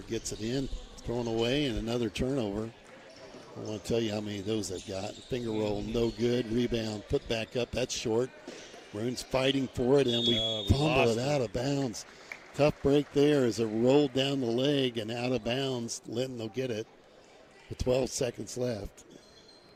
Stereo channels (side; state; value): both; identical; correlation 1.00